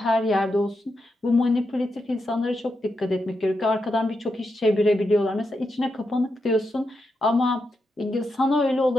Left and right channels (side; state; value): both; normal; correlation 0.85